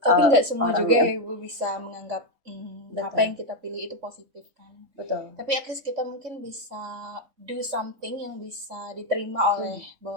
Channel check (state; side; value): late; left; 3.5 ms